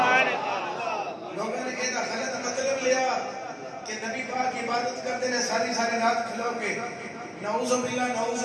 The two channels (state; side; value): identical; both; correlation 1.00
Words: لوگوں نے یہ غلط مطلب لیا کہ نبی پاک عبادت کرتے ہیں ساری رات کھلو کے، نعوذ باللہ نعوذ